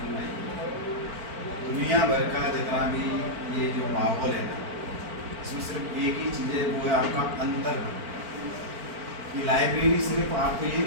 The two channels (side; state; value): left; late; 4.4 ms